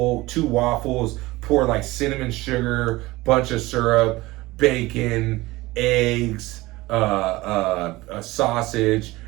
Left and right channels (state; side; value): quieter; left; 19.8 dB